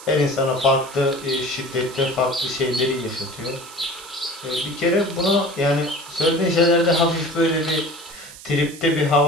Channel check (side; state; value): right; noise; hiss, 17 dB below the sound